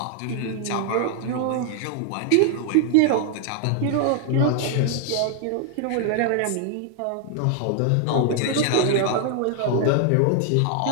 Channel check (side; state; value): both; different; correlation 0.00